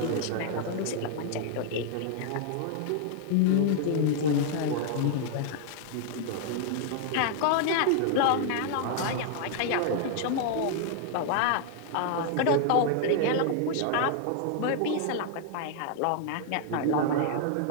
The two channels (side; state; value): both; different; correlation 0.00